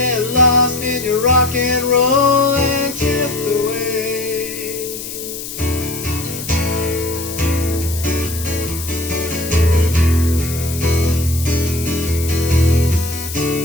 lost in your rock and roll and drift away.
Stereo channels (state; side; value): noise; left; hiss, 9 dB below the sound